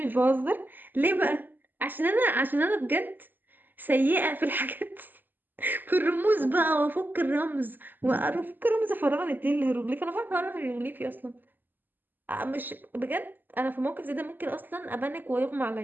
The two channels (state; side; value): late; left; 0.090 ms